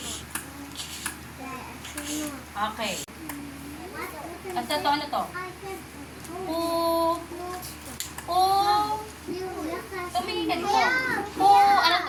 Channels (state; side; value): identical; both; correlation 1.00